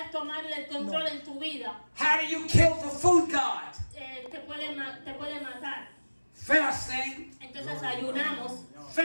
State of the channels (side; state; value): both; inverted; correlation -1.00